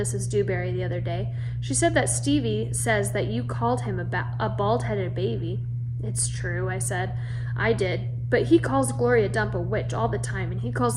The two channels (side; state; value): both; identical; correlation 1.00